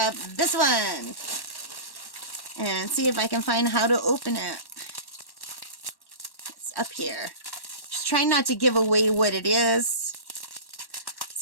this one. And see if I can find how to open it. It's up here. Just trying not to give away what it is.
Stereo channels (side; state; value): right; late; 1.1 ms